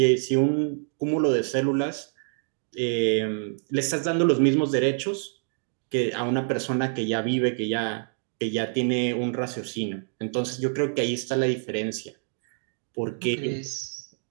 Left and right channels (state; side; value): silent; left; 57 dB below the other